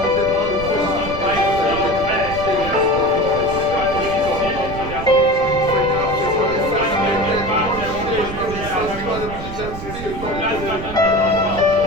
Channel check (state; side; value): noise; right; rumble, 10 dB below the sound